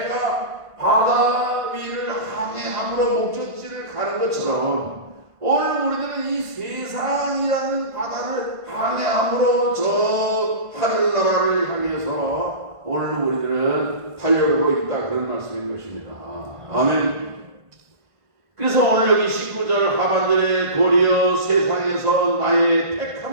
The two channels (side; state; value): left; late; 1.5 ms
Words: 바다 위를 항해함으로 목적지를 가는 것처럼 오늘 우리들은 이 세상이라는 바다를 항해함으로 저 하늘나라를 향해서 오늘 우리들은 달려가고 있다, 그런 말씀인 것입니다. 아멘. 그래서 오늘 여기 19절 하반절에 도리어 세상에서 나의